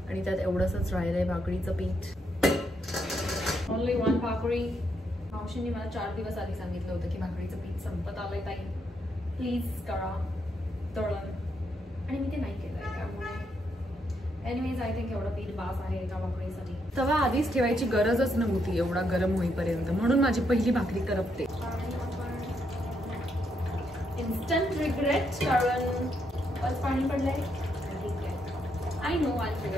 आणि त्यात एवढंच राहिलंय भाकरीचं पीठ. ओनली 1 भाकरी. मावशींनी मला 4 दिवस आधी सांगितलं होतं की भाकरीचं पीठ संपत आलंय ताई, प्लीज करा तळण. आणि मी ते नाही केलंय, त्यामुळे एनिवेज आय थिंक एवढं पीठ बास आहे एका भाकरीसाठी. तवा आधीच ठेवायची गरजच नव्हती एवढा गरम होईपर्यंत, म्हणून माझी पहिली भाकरी करपते. इन्स्टंट रिग्रेट, कारण बस पाणी पडलंय. I know I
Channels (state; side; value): normal; both; correlation 0.78